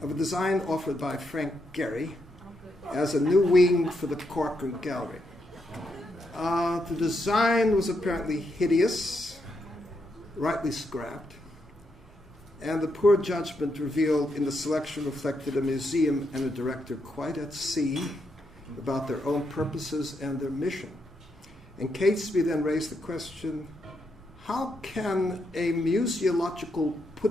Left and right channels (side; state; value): both; normal; correlation 0.80